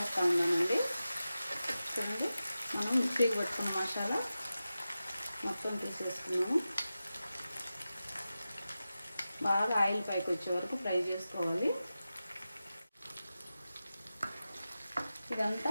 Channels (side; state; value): both; inverted; correlation -0.93